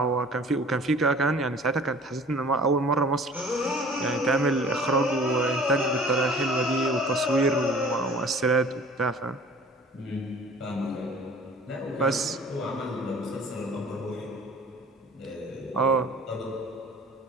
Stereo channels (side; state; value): both; normal; correlation 0.48